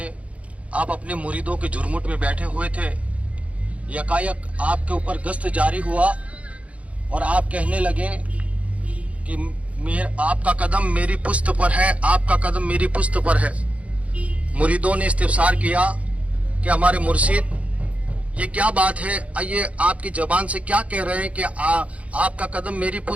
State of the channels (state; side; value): late; left; 0.065 ms